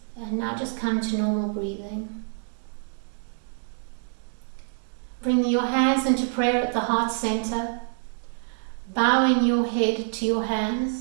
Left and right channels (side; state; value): left; silent; digital silence